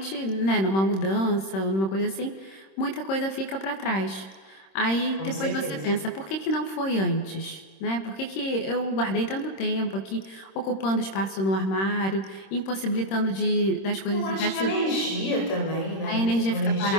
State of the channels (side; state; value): right; late; 26 ms